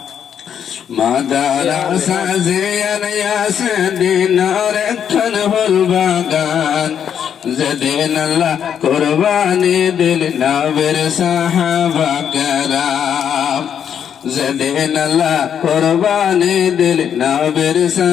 মাদ্রাসা জিয়ান ইয়াসিন রক্ষণ হল বাগান যেদিন আল্লাহ কুরবানি দিল নবীর সাহাবা কেরাম যেদিন আল্লাহ কুরবানি দিল নবীর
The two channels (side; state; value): right; quieter; 8.5 dB